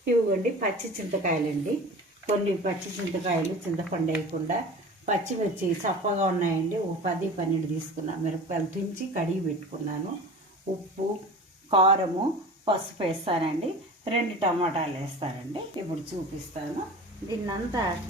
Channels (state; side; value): normal; both; correlation 0.37